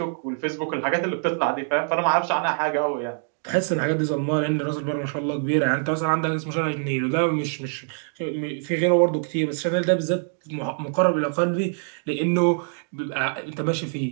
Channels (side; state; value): left; silent; digital silence